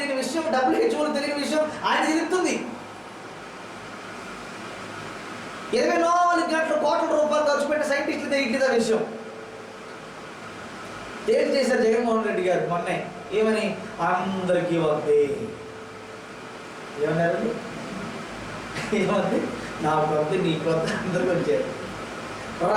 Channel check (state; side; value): identical; both; correlation 1.00